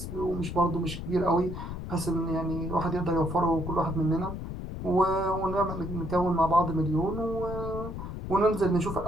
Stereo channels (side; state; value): left; noise; rumble, 7 dB below the sound